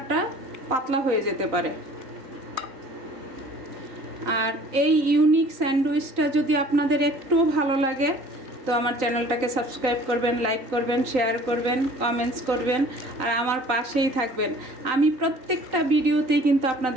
পাতলা হয়ে যেতে পারে। আর এই ইউনিক স্যান্ডউইচটা যদি আপনাদের একটু ভালো লাগে তো আমার চ্যানেলটাকে সাবস্ক্রাইব করবেন, লাইক করবেন, শেয়ার করবেন, কমেন্টস করবেন, আর আমার পাশেই থাকবেন। আমি প্রত্যেকটা ভিডিওতেই কিন্তু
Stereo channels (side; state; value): left; late; 3.9 ms